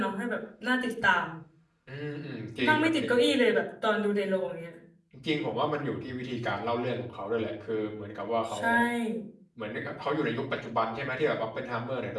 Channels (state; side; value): identical; both; correlation 1.00